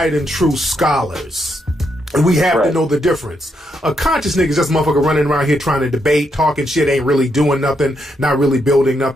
and true scholars. And we have to know the difference. A conscious nigga is just a motherfucker running around here trying to debate, talking shit, ain't really doing nothing, not really building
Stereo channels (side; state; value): both; normal; correlation 0.79